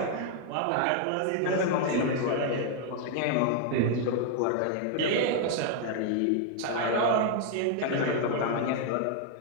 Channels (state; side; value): different; both; correlation 0.00